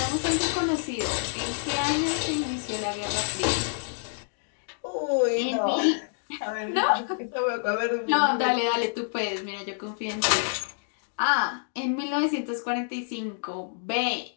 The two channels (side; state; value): right; silent; digital silence